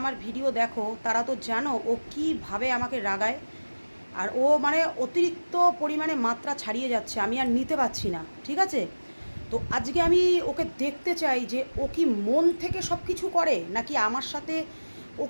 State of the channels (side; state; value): both; inverted; correlation -1.00